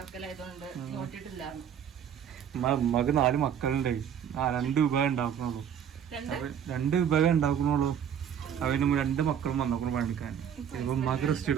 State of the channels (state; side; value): quieter; left; 8.7 dB